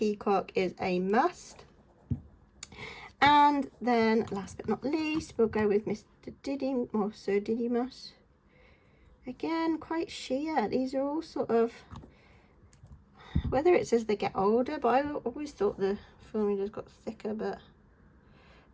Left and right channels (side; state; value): both; identical; correlation 1.00